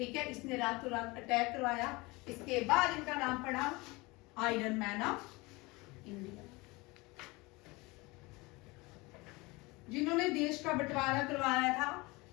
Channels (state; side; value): quieter; right; 23.9 dB